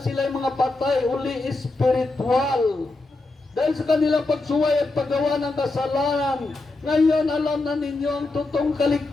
sila ay mga patay, uli espiritual. Dahil sa kanilang pagsuway at paggawa ng kasalanan, ngayon alam na ninyo ang totoong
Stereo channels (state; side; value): quieter; right; 3.2 dB